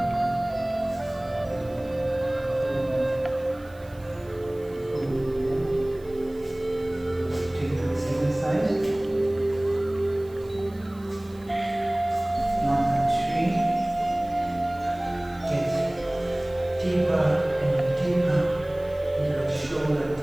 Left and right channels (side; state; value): right; noise; hiss, 27 dB below the sound